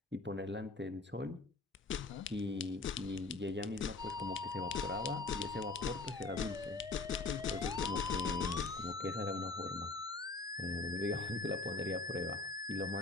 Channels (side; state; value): right; quieter; 3.5 dB